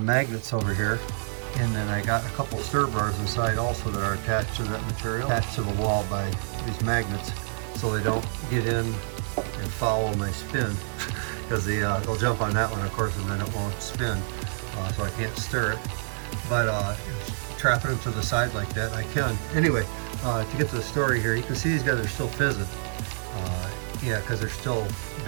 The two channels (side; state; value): left; silent; digital silence